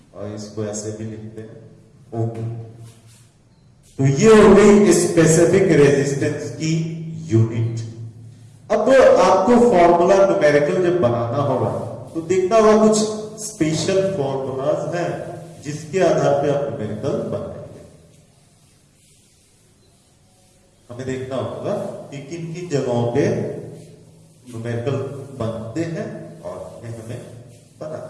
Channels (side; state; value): both; identical; correlation 1.00